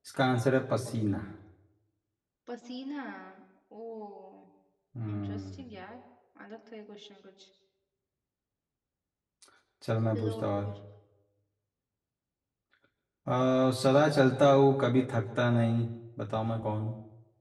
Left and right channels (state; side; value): identical; both; correlation 1.00